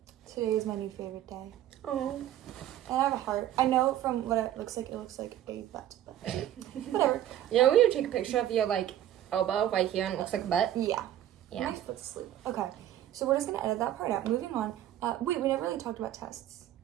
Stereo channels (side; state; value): left; quieter; 12.1 dB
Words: Today is my new favorite day. Oh. And I have a heart. I know from what it looks like a butt, but whatever. Yeah, we would take a picture of your, like, elbow right here and it looks like a butt. Yeah. Yeah. My foot's asleep. Okay. So we're just going to edit that part out. Moving on. Wait, we never really talked about tests.